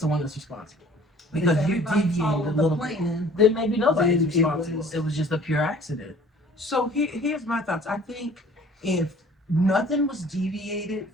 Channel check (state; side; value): normal; both; correlation 0.51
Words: one that's responsible. Because you deviated a little bit. Then maybe nobody's Then it responsible. was- It was just a pure accident. So here's my thoughts. I think if nothing was deviated